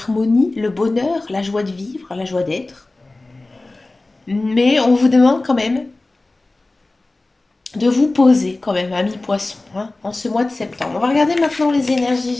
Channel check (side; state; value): right; quieter; 3.0 dB